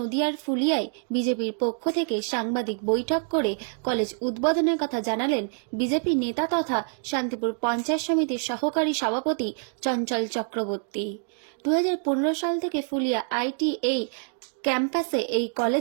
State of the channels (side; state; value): left; silent; 56 dB below the other